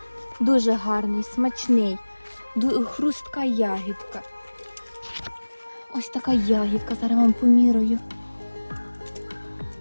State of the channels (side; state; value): both; inverted; correlation -1.00